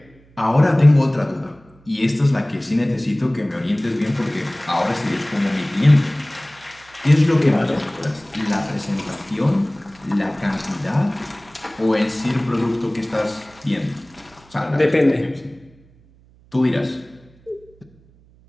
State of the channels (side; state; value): right; noise; hum, 28 dB below the sound